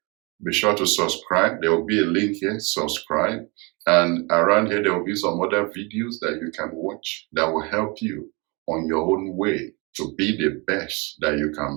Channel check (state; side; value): quieter; left; 28.9 dB